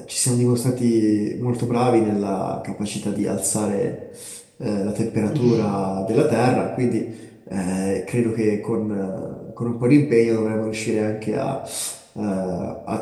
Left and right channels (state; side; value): identical; both; correlation 1.00